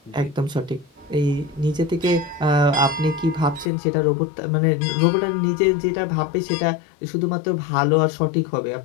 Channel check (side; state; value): right; drops out; at 3.7 s